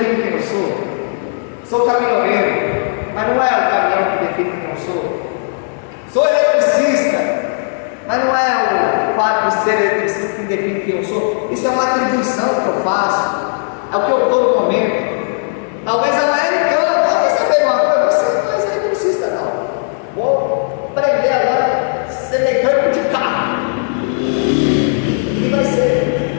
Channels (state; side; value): silent; right; digital silence